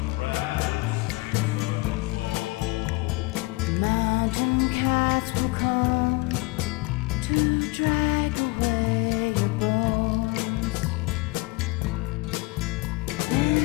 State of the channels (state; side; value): quieter; right; 24.6 dB